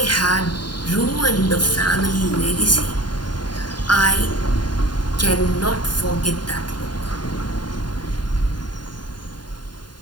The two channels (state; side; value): late; right; 0.71 ms